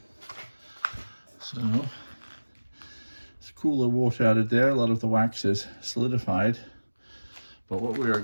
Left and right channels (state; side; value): inverted; both; correlation -1.00